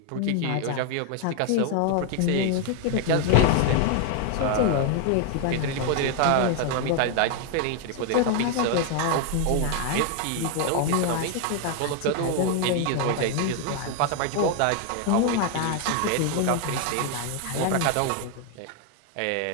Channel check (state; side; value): different; both; correlation 0.01